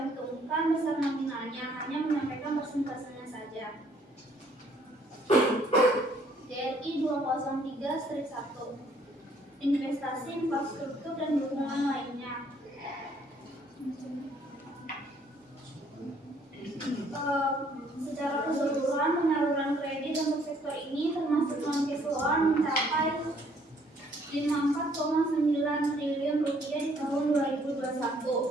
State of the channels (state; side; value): normal; both; correlation 0.64